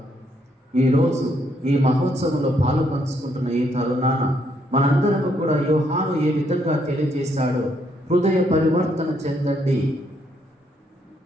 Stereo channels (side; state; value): both; normal; correlation 0.73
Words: ఈరోజు ఈ మహోత్సవంలో పాలు పంచుకుంటున్న ఈ తరుణాన మనందరం కూడా యోహాను ఏ విధంగా తెలియజేశాడో హృదయ పరివర్తన చెందండి,